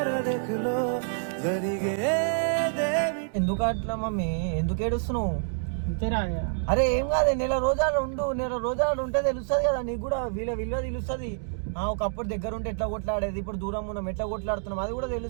ఎందుకు అట్లా మమ్మీ? ఎందుకు ఏడుస్తున్నావు? అంతేరా అరే ఏం కాదు, నెల రోజులు ఉండు, నెల రోజులు ఉంటే తెలుస్తుంది కదా నీకు కూడా, విలువ తెలుస్తుంది. ఒకప్పుడు దగ్గర ఉంటే ఎట్లా కొట్లాడేది, ఇప్పుడు దూరం ఉన్నాం ఎట్లా కొట్లాడుతున్నాం అది కూడా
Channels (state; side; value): silent; left; digital silence